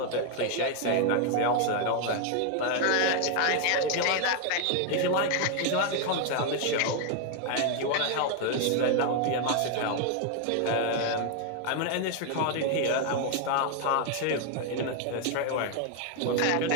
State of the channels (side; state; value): both; different; correlation 0.01